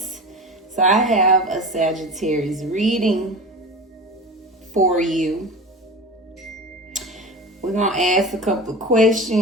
So I have a Sagittarius reading for you. We're going to ask a couple of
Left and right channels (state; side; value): normal; both; correlation 0.31